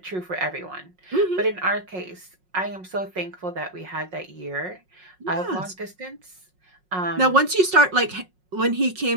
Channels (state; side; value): late; left; 5.5 ms